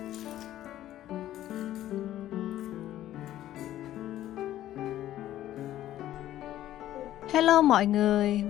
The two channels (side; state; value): right; quieter; 13.2 dB